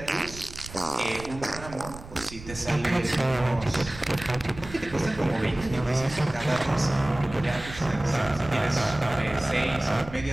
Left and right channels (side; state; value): right; noise; rumble, 14 dB below the sound